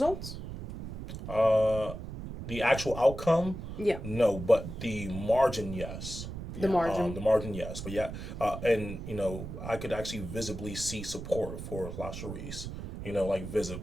The actual outcome, Yeah. no, but the margin, yes. The margin. The margin, yes. But yeah, and I could actually visibly see support for LaSharice.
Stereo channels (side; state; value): right; noise; rumble, 8 dB below the sound